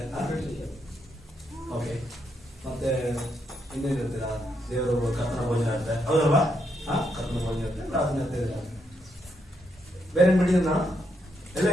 ಓಕೆ. ಮತ್ತೆ ಇನ್ನೇನಿರುತ್ತೀರ, ದೇವರು ಕರ್ತನ ಭೋಜನ ಇರುತ್ತೆ, ಹೌದಲ್ವಾ? ಕರ್ತನ ಭೋಜನ ಇರುತ್ತೆ, ಪ್ರಾರ್ಥನೆ ಇರುತ್ತೆ. ಬೇರೆ ಬಿಟ್ಟಿದ್ದು ನಾನು ಎಲ್ಲ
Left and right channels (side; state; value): both; normal; correlation 0.79